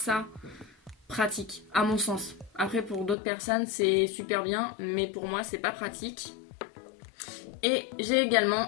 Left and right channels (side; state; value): right; drops out; at 3.2 s